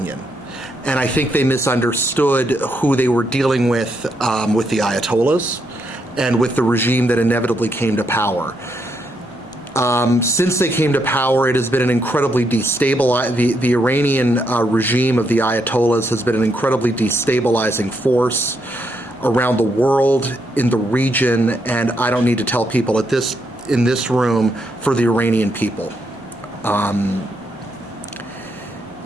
And I think they misunderstood who they were dealing with the Ayatollahs and with the regime that inevitably came to power. Since they came to power, it has been an incredibly destabilizing, the Iranian regime of the Ayatollahs has been an incredibly destabilizing force around the world, in the region, and I don't need to tell people in this room, for the Iranian people.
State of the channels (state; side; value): normal; both; correlation 0.78